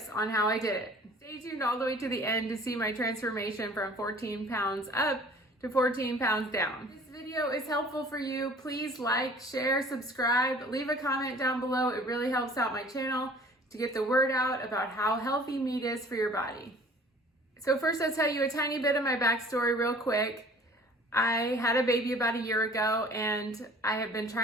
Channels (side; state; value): both; normal; correlation 0.49